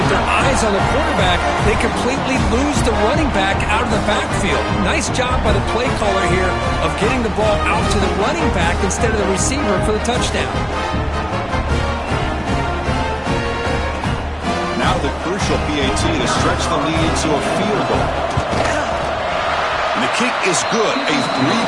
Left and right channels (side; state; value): both; identical; correlation 1.00